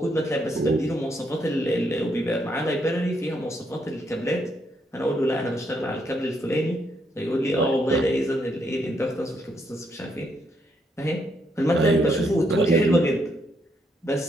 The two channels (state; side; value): normal; both; correlation 0.75